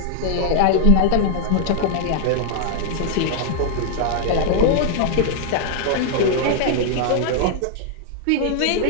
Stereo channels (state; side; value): different; both; correlation 0.00